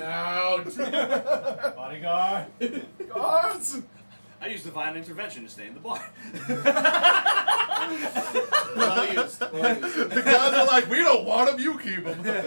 Bodyguard. Guards! I used divine intervention to stay in the bar. Well used. Well used. The guys are like, we don't want him, you keep him.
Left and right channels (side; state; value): both; inverted; correlation -1.00